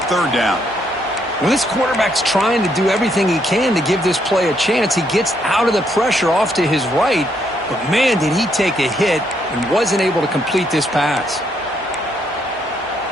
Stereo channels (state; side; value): normal; both; correlation 0.74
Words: 3rd down. Well, this quarterback's trying to do everything he can to give this play a chance. He gets out of the pressure off to his right, but man, did he take a hit and wasn't able to complete this pass.